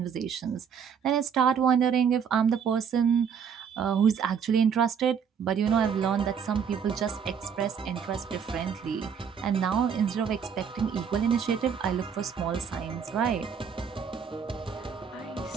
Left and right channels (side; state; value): left; quieter; 7.1 dB